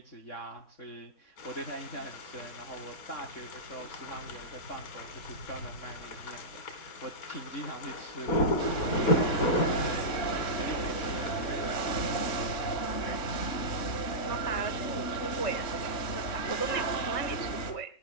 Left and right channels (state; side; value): late; right; 3.7 ms